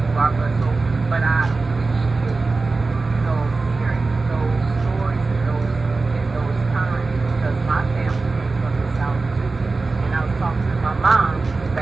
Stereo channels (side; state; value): left; quieter; 3.8 dB